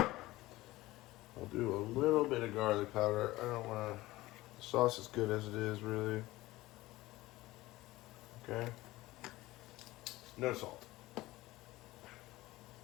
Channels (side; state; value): right; quieter; 18.3 dB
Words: I'll do a little bit of garlic powder. I don't want to. The sauce is good as it is, really. Okay. No salt.